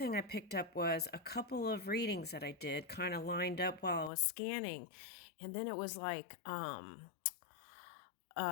I picked up was a couple of readings that I did kind of lined up while I was scanning. And then it was like, uh,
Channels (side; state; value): right; drops out; at 4.1 s